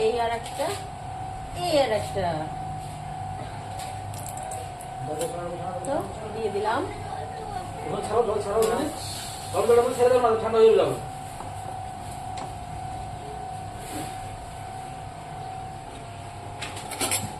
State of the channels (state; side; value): identical; both; correlation 1.00